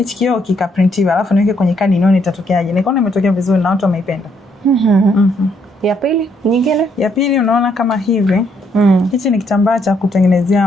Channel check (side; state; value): both; normal; correlation 0.72